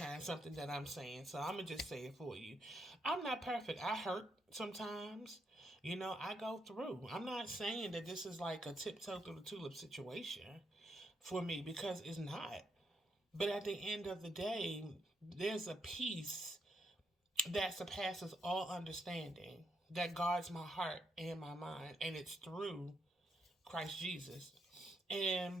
something that I'm saying. So I'm going to just say it for you. I'm not perfect. I hurt sometimes. I go through. I'm not saying that this is like a tiptoe through the tulip situation for me because it's not. But at the end of the day, there's a peace that surpasses all understanding that guards my heart and my mind, and it's through Christ Jesus.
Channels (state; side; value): normal; both; correlation 0.79